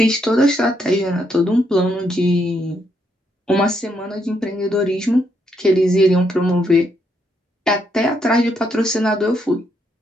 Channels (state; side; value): normal; both; correlation 0.76